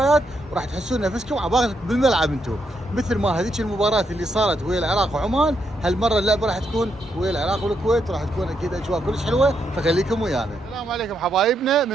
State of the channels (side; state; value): both; normal; correlation 0.79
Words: وراح تحسون نفسكم عبالك بالملعب انتم، مثل ما هذيك المباراه اللي صارت ويا العراق وعمان. هالمره اللعبه راح تكون ويا العراق والكويت، وراح تكون اكيد اجواء كلش حلوه، فخليكم ويانا. السلام عليكم حبايبنا،